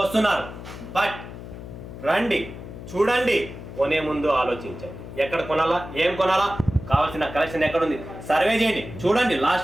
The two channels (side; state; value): left; noise; hum, 12 dB below the sound